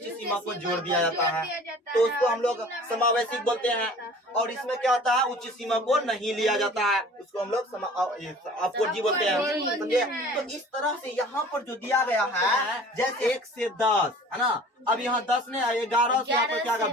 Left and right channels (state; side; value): normal; both; correlation 0.46